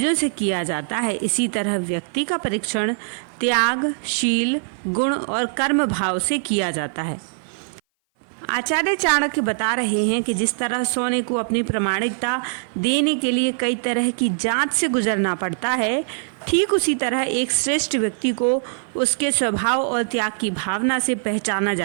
से किया जाता है, इसी तरह व्यक्ति का परीक्षण त्याग, शील, गुण और कर्म भाव से किया जाता है। आचार्य चाणक्य बता रहे हैं कि जिस तरह सोने को अपनी प्रामाणिकता देने के लिए कई तरह की जांच से गुजरना पड़ता है, ठीक उसी तरह एक श्रेष्ठ व्यक्ति को उसके स्वभाव और त्याग की भावना से पहचाना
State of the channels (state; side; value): silent; left; 57 dB below the other